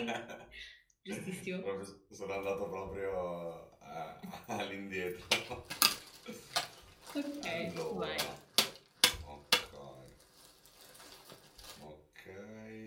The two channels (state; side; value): identical; both; correlation 1.00